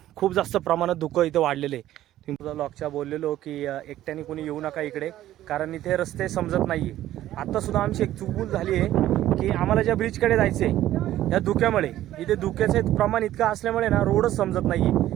खूप जास्त प्रमाणात धुकं इथे वाढलेलं आहे. तुम्ही लॉकच्या बोललेलो की एकट्याने कोणी येऊ नका इकडे, कारण इथे रस्ते समजत नाही आहे. आत्तासुद्धा आमची एक चूक झाली आहे की आम्हाला ज्या ब्रिजकडे जायचं आहे या धुक्यामुळे, इथे धुक्याचं प्रमाण इतकं असल्यामुळे ना रोडच समजत नाही आहे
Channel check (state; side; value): quieter; left; 13.5 dB